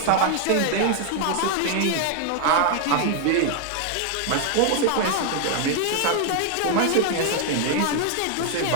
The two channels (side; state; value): both; different; correlation 0.00